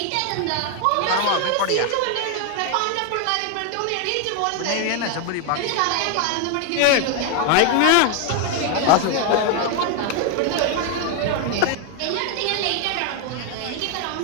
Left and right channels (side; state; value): both; different; correlation 0.01